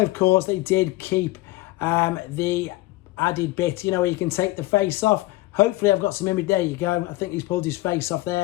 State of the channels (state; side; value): quieter; right; 18.9 dB